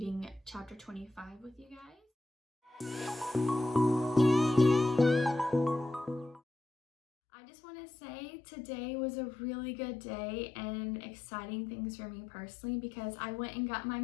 chapter 25 with you guys. I just want to say today was a really good day and exciting things for me personally because I went and got my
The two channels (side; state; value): right; drops out; at 6.4 s